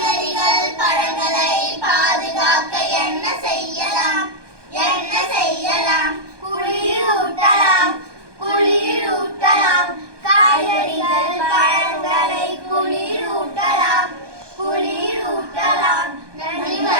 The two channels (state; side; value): late; left; 1.2 ms